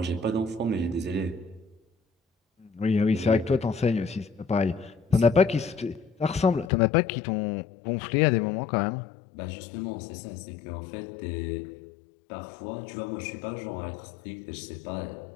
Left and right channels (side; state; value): right; drops out; at 6.7 s